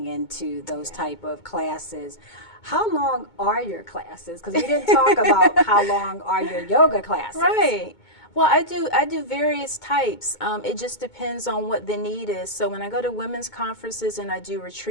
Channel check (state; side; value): late; right; 2.2 ms